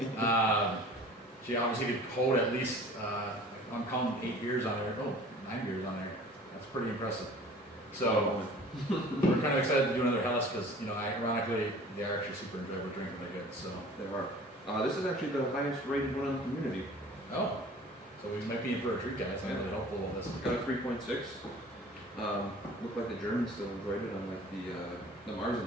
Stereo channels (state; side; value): normal; both; correlation 0.45